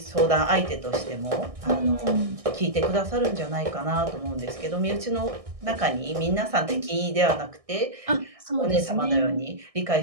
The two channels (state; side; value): late; left; 1.6 ms